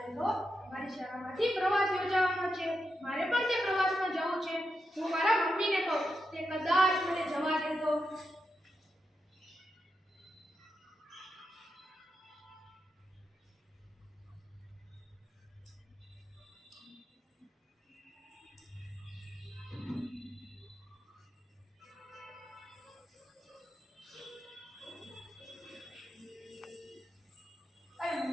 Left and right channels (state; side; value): normal; both; correlation 0.86